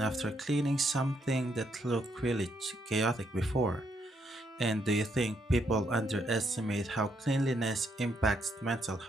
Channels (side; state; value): both; normal; correlation 0.75